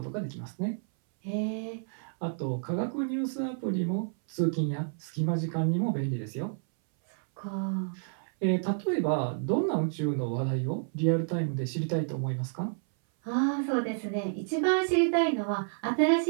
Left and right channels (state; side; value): silent; left; 58 dB below the other